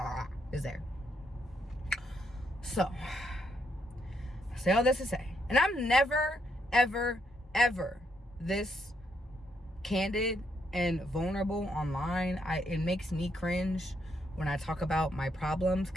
is there. So, I say all this to say, and I'm never, ever, ever this candid and vulnerable online. It makes me cringe when I talk about my problems,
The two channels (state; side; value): normal; both; correlation 0.76